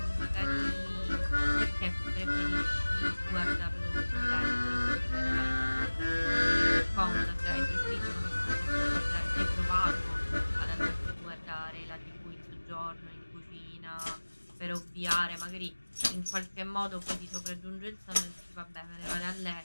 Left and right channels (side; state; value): both; inverted; correlation -1.00